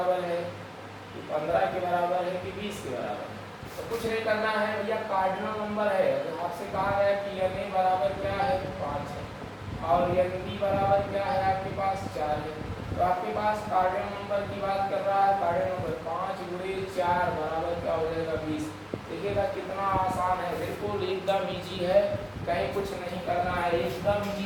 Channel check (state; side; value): identical; both; correlation 1.00